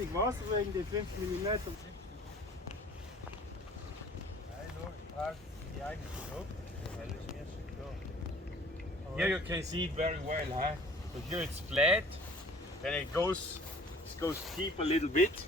Wasser wegen den 5 mm. Nein, nur, ich brauche die eigene Luft. Das ist mir schon klar. Here you can see it very well, So here it's flat, then it goes steep a little bit,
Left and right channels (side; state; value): both; normal; correlation 0.50